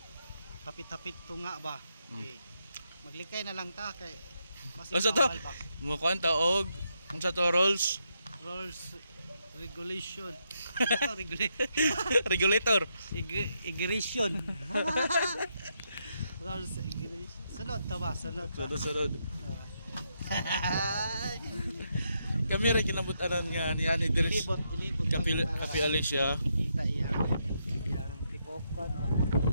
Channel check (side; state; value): both; inverted; correlation -0.80